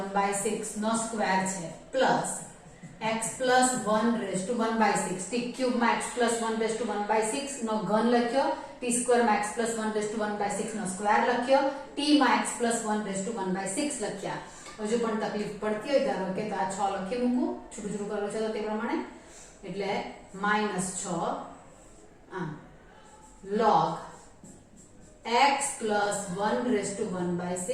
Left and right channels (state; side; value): identical; both; correlation 1.00